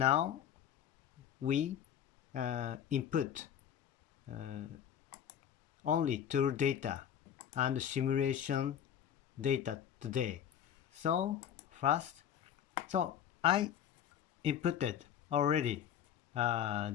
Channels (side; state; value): right; quieter; 9.4 dB